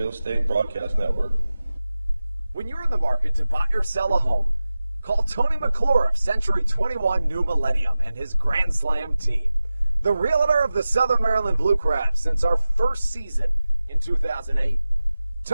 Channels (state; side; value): inverted; both; correlation -0.95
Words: Estate Broadcast Network. When you're in the market to buy or sell a home, call Tony McClure of Century 21 New Millennium and his Grand Slam team. The realtor of the Southern Maryland Blue Crabs since our first season in 2008.